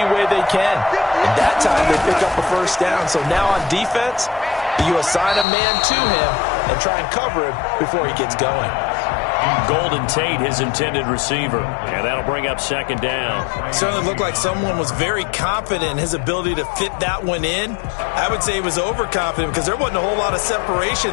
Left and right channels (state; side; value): drops out; right; at 5.5 s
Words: way they can. And that time they pick up a first down. So now on defense, you assign a man to him and try and cover him before he gets going. Golden Tate, his intended receiver. And that'll bring up second down. Certainly looked like someone was very confident in his ability to fit that one in. I would say he was overconfident because there wasn't a whole lot of